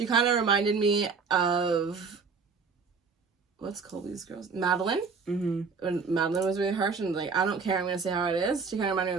kind of reminded me of what's Colby's girls? Madeline. Mm-hmm. When Madeline was really harsh and like, I don't care, I'm gonna say how it is. She kind of reminded me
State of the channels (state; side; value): quieter; left; 5.1 dB